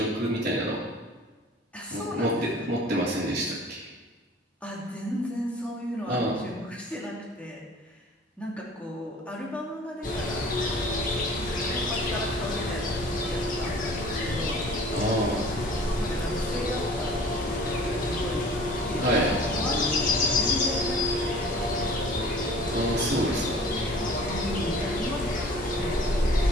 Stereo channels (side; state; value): both; normal; correlation 0.48